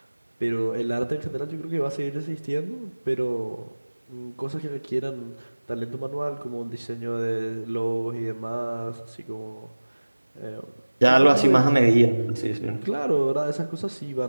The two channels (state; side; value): inverted; both; correlation -1.00